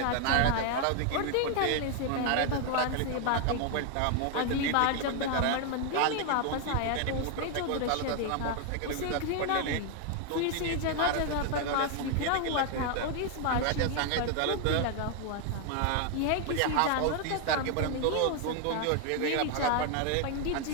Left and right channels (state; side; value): different; both; correlation 0.00